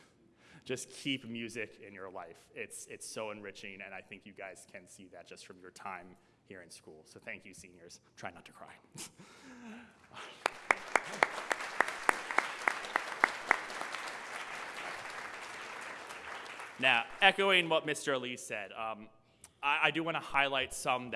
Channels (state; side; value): identical; both; correlation 1.00